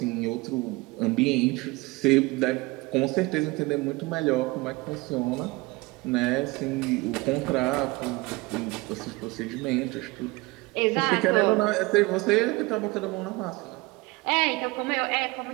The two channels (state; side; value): quieter; left; 23.1 dB